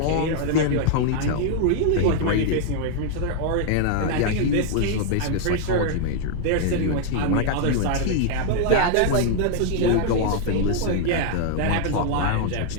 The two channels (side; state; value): both; different; correlation 0.00